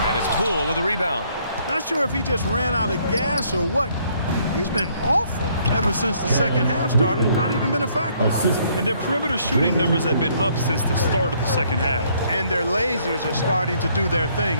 And it's Poole with a rebound. Not sure if he just ran out of gas or what. He's been awful ever since the second half started. Not even been a factor. And their perimeter shooting numbers have been up since the start of the second half. And their lasers are starting to do their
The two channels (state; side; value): inverted; both; correlation -0.66